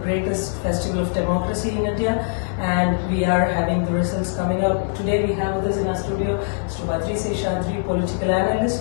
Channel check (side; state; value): right; silent; 64 dB below the other